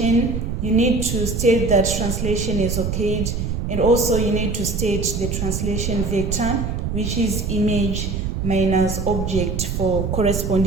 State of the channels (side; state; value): right; noise; rumble, 2 dB below the sound